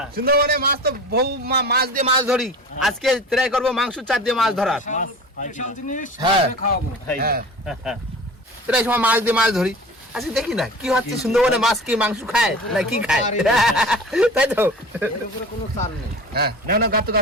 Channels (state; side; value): normal; both; correlation 0.38